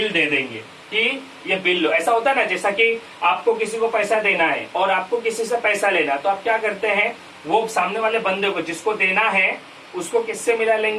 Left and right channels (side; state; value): both; identical; correlation 1.00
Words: दे देंगे कि ये बिल लो। ऐसा होता है ना, जैसा कि आपको किसी को पैसा देना है और आपको किसी से पैसा लेना, तो आप क्या करते हैं, वो सामने वाले बंदे को जिसको देना है उसको किससे मिला